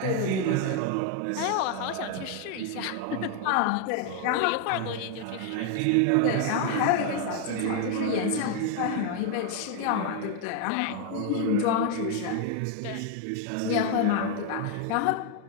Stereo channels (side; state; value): both; different; correlation 0.01